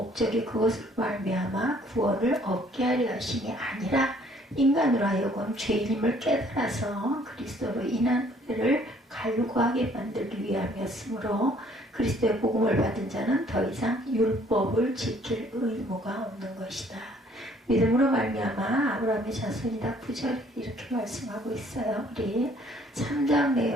그것을 말미암아 구원을 얻게 하려 하심이 아니라 인간으로 하여금 죄인임을 깨달아서 그리스도로 인한 은혜를 갈구하게 만들기 위함이었으므로, 그리스도의 복음을 받은 자는 더 이상 율법을 지킬 의무가 없는 것이다. 믿음으로 말미암아 아브라함의 자손이다. 9절에 이렇게 말씀하고 있어요. 우리 3장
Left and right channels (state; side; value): normal; both; correlation 0.60